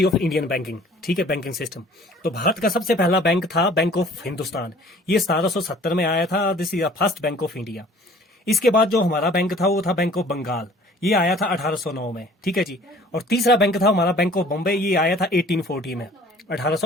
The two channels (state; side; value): normal; both; correlation 0.52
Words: ऑफ इंडियन बैंकिंग। ठीक है, बैंकिंग सिस्टम। तो भारत का सबसे पहला बैंक था बैंक ऑफ हिंदुस्तान। ये 1770 में आया था। This is the first bank of India. इसके बाद जो हमारा बैंक था वो था बैंक ऑफ बंगाल। ये आया था 1809 में। ठीक है जी। और तीसरा बैंक था हमारा बैंक ऑफ बॉम्बे। ये आया था 1840 में,